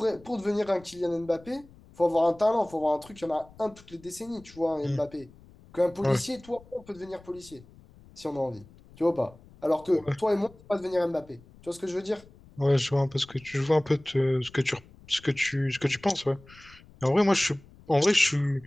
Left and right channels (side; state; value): left; noise; rumble, 24 dB below the sound